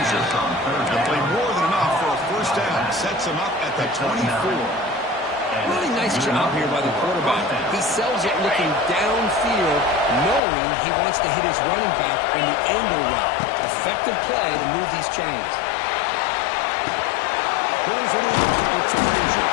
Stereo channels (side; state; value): right; drops out; at 10.4 s